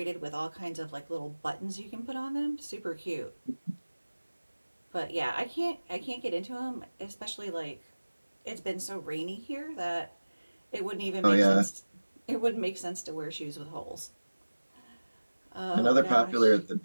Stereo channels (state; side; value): inverted; both; correlation -1.00